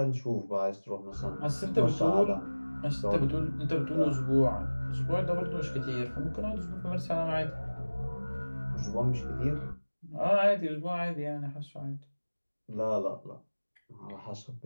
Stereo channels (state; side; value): inverted; both; correlation -1.00